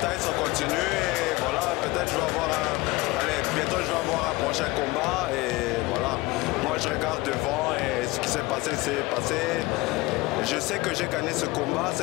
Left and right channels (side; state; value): right; quieter; 21.6 dB